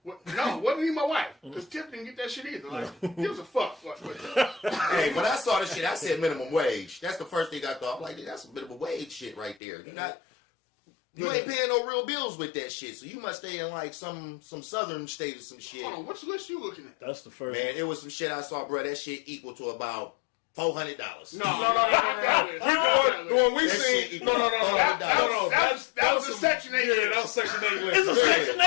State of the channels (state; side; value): drops out; right; at 9.6 s